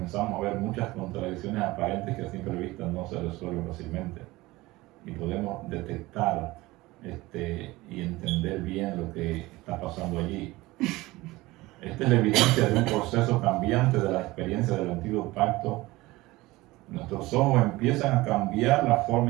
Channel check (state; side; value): quieter; left; 19.9 dB